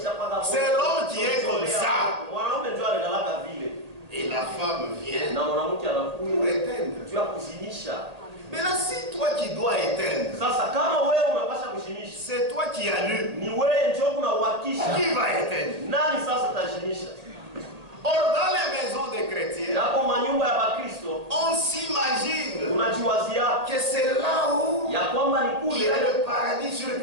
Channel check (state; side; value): late; left; 1.8 ms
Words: C'est l'homme qui est comme ça. Mwanaume ndio analala vile. Et la femme vient Na mwanamke pour anakuja éteindre. juu ya kuzimisha. Maintenant, si toi qui dois éteindre, Sasa kama wewe unapasha kuzimisha, c'est toi qui allumes, ni wewe ndio unauhakisha. qui va éteindre? Nani sasa tazimisha? Or, dans les maisons des chrétiens, Hapo manyumba ya Bakristo on s'imagine unajiwazia que c'est là où ya kwamba ni il y kule a le paradis sur